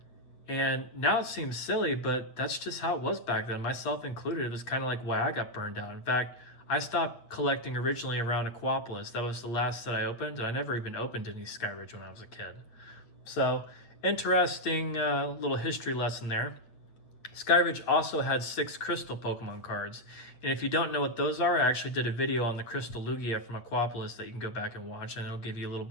And now it seems silly, but that's just how it was back then, myself included. It was kind of like why I got burned out. In fact, I stopped collecting originally around Aquapolis. That was the last that I opened, and I never even opened any Skyridge when I was a kid. So, interesting little history lesson there. Skyridge also had 6 Crystal Pokemon cards, and if you don't know what those are, I actually did a video on the Crystal Lugia from Aquapolis that you can go back and watch, and it'll give you a little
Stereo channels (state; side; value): late; right; 8.3 ms